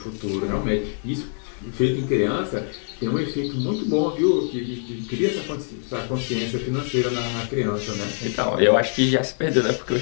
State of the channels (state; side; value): silent; right; 56 dB below the other